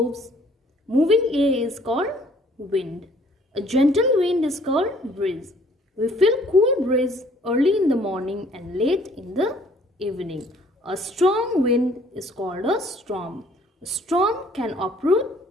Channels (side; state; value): both; normal; correlation 0.59